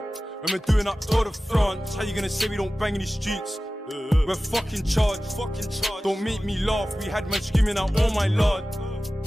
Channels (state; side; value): normal; both; correlation 0.96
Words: When we're doing up Tour de France. How you gonna say we don't bang in the streets? We're fucking charged. Don't make me laugh. We had man screaming out, oh my lord.